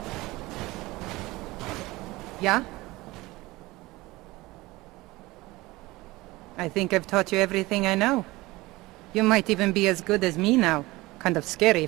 Yeah? I think I've taught you everything I know. You might even be as good as me now. Kind of scary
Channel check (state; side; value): quieter; left; 20.4 dB